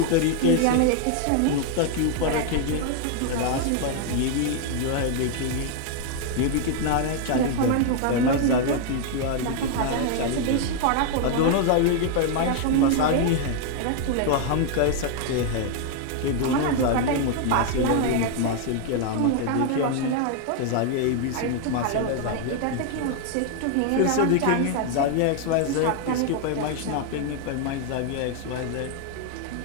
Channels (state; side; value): different; both; correlation 0.00